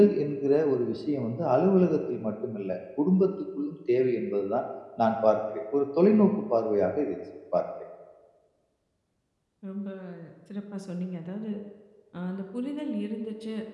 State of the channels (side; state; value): both; identical; correlation 1.00